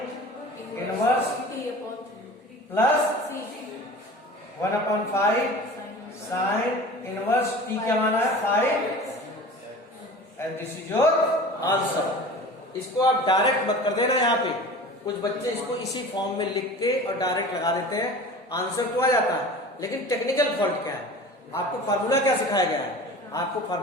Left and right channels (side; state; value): both; normal; correlation 0.38